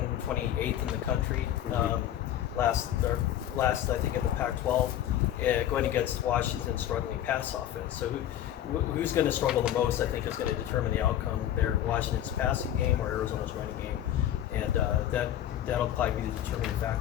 in the country. Last I think in the Pac-12, going against Washington's struggling pass offense. So who's going to struggle the most, I think, is going to determine the outcome there. Washington's passing game or Arizona's running game, and that'll probably be the determining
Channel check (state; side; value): quieter; right; 11.4 dB